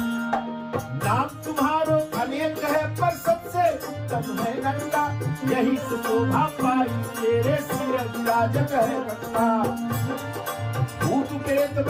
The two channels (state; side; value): identical; both; correlation 1.00